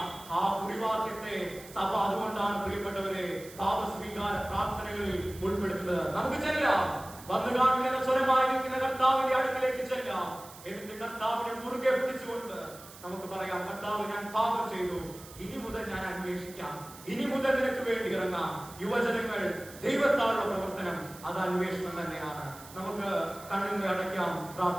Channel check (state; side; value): noise; right; hiss, 18 dB below the sound